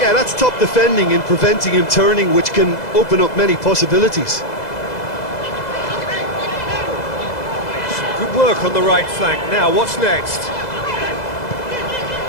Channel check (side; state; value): right; late; 2.0 ms